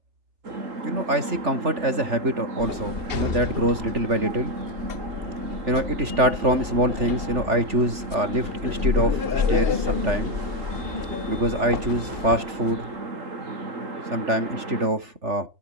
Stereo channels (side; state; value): left; late; 3.4 ms